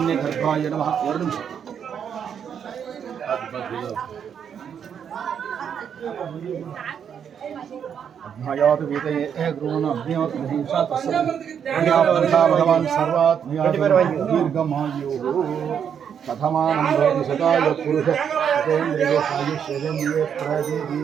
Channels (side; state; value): left; quieter; 8.0 dB